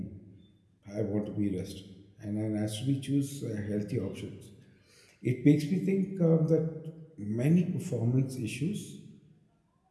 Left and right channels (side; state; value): both; identical; correlation 1.00